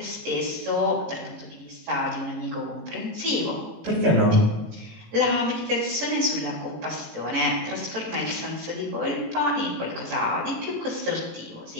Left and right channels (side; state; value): left; late; 18 ms